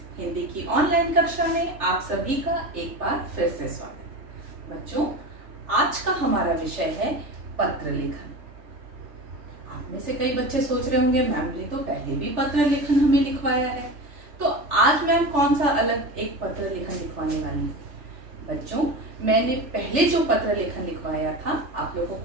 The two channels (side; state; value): left; late; 3.4 ms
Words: हिंदी की ऑनलाइन कक्षा में आप सभी का एक बार फिर से स्वागत है। बच्चों, आज का हमारा विषय है पत्र लेखन। आप में से कई बच्चे सोच रहे होंगे मैम ने तो पहले भी पत्र लेखन हमें लिखवाया है, तो आज मैम कौन सा अलग एक पत्र लेखन लिखवाने वाली है। बच्चों, मैंने पहले जो पत्र लेखन लिखवाया था, आप लोगों